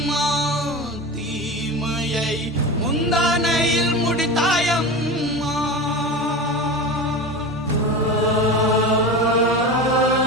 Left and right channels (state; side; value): normal; both; correlation 0.27